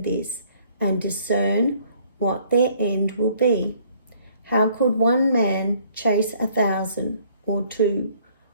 this and discern what their end will be. How could one man chase 1,000 or two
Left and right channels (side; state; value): both; inverted; correlation -0.60